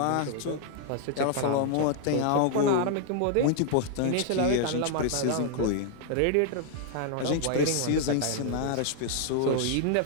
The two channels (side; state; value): both; different; correlation 0.00